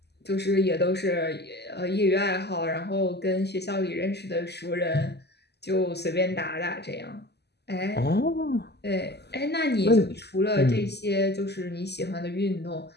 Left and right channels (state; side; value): late; right; 0.49 ms